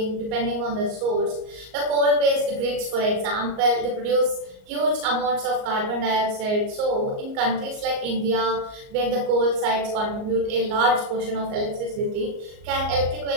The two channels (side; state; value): left; late; 38 ms